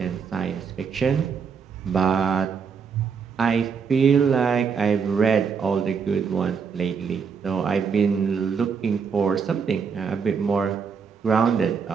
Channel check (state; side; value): quieter; left; 6.1 dB